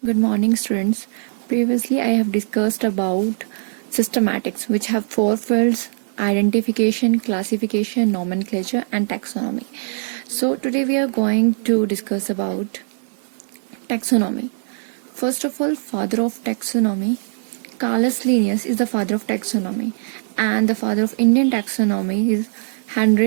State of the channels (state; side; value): silent; left; digital silence